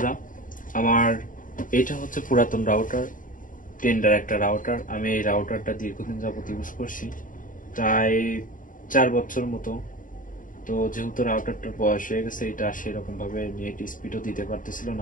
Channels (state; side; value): late; right; 0.39 ms